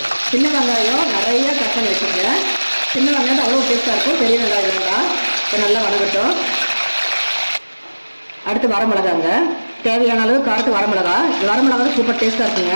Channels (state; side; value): inverted; both; correlation -1.00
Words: சின்ன வெங்காயம் நிறைய கட் பண்ணி வச்சுருக்கேன். சின்ன வெங்காயம் தான் அவ்வளோ டேஸ்டா இருக்கும். பெரிய வெங்காயம் வேண்டாம். இப்போ நல்லா வதங்கட்டும். அடுத்து வரமிளகாங்க, தேவையான அளவு காரத்து வரமிளகா. வரமிளகா சூப்பர் டேஸ்டா இருக்குங்க.